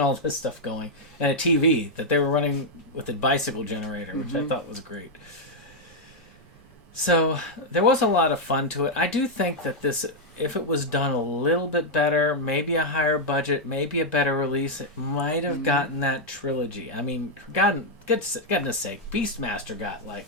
all this stuff going, and a TV that they were running with a bicycle generator, which I thought was great. So there was a lot of fun to it. I do think that this, if it was done a little bit better, maybe a higher budget, maybe a better release, it might have gotten that trilogy. I mean, goodness sake, Beastmaster got like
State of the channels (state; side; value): normal; both; correlation -0.02